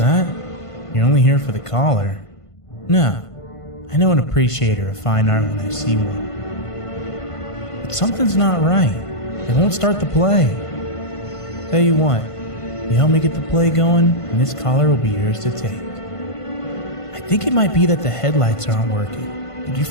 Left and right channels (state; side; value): late; right; 1.5 ms